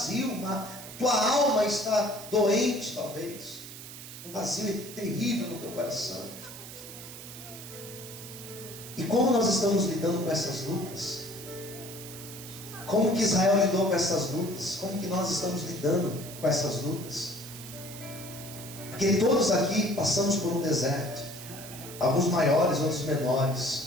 tua alma está doente, talvez. um vazio terrível no teu coração. E como nós estamos lidando com essas lutas? Como que Israel lidou com essas lutas? Como que nós estamos lidando com essas lutas? Porque todos aqui passamos por um deserto. Alguns maiores, outros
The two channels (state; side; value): noise; right; hiss, 13 dB below the sound